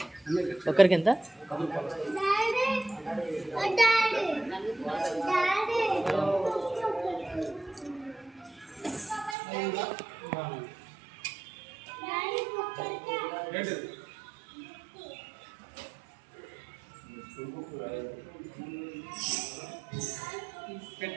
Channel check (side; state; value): left; drops out; at 9.3 s